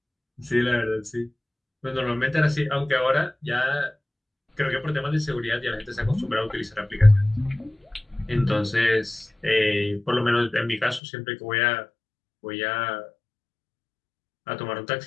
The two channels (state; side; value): drops out; right; at 11.0 s